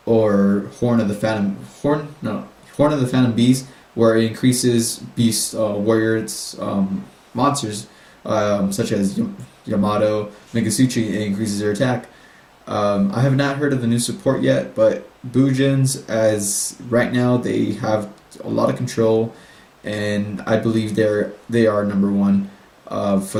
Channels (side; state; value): both; identical; correlation 1.00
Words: or Horn of the Phantom Beast, where it increases Beast warriors monsters such as Yamato, Megasuchi. It increases their attack. I have not heard of the new support yet, but Bujins, as right now, they have a lot of control, and I believe they are number one for